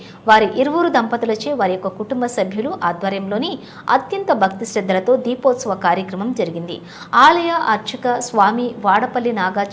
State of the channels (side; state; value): both; identical; correlation 1.00